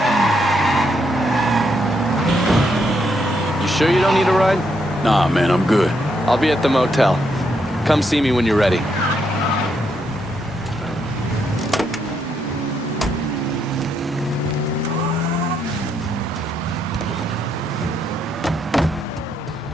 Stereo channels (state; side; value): normal; both; correlation 0.77